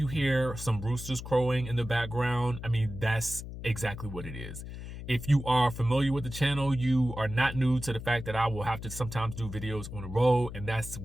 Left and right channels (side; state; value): left; noise; hum, 10 dB below the sound